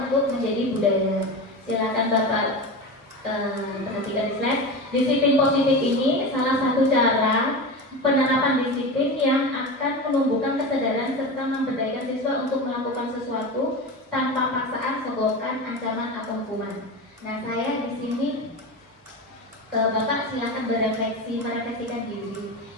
untuk menjadi budaya. Silakan Bapak perhatikan di slide. Disiplin positif ini salah satu cara penerapan disiplin yang akan menumbuhkan kesadaran serta memberdayakan siswa untuk melakukan sesuatu tanpa paksaan, sogokan, ancaman atau hukuman. Nah, saya di sini Bapak silakan merefleksikan diri.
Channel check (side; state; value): both; normal; correlation 0.25